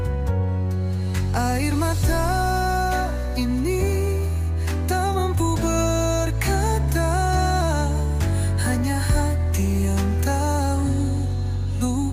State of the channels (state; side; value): identical; both; correlation 1.00